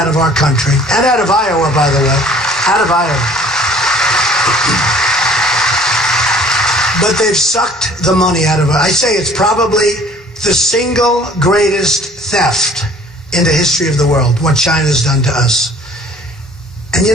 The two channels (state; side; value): normal; both; correlation 0.52